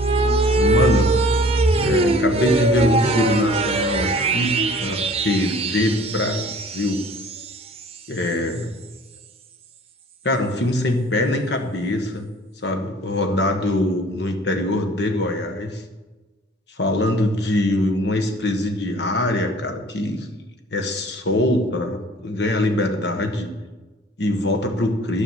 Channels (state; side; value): normal; both; correlation 0.50